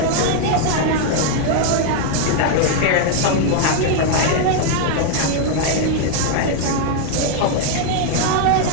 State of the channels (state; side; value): different; both; correlation 0.00